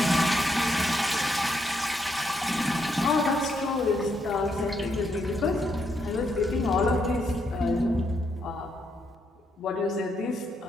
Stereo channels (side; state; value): both; normal; correlation 0.78